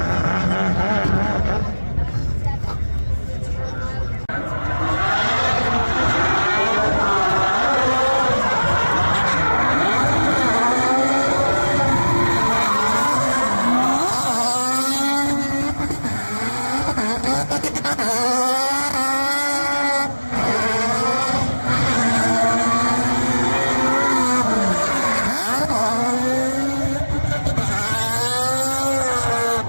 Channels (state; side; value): inverted; both; correlation -1.00